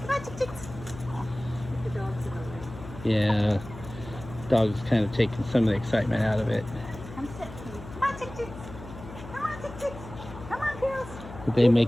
Come on, chicks. The dogs in the way. Yeah. Dog's kind of taking some of the excitement out of it. Come sit. Come on, chicks. Come on, chicks. Come on, girls. They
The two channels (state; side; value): noise; left; hum, 14 dB below the sound